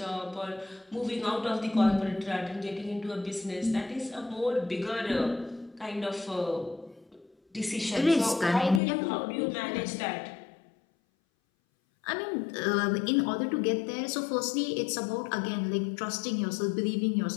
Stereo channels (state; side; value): drops out; right; at 8.8 s